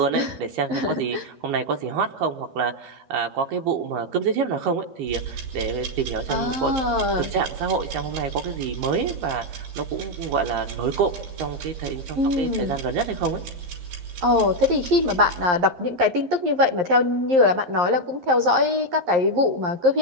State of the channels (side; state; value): left; late; 11 ms